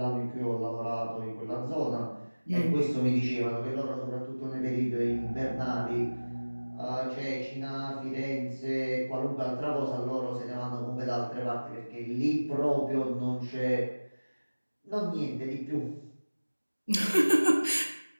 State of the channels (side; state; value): both; inverted; correlation -1.00